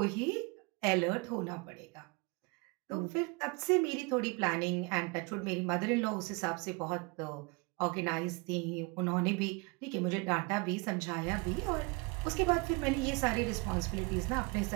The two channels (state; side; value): quieter; left; 29.1 dB